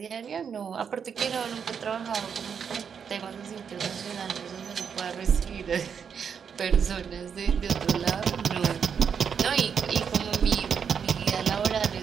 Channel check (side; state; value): left; quieter; 7.0 dB